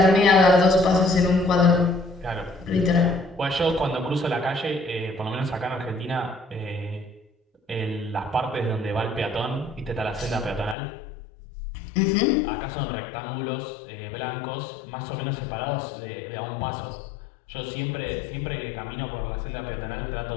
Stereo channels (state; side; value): drops out; right; at 10.8 s